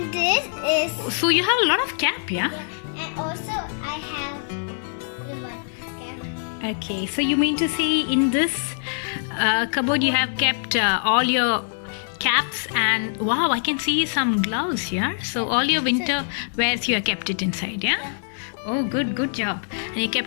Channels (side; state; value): right; silent; digital silence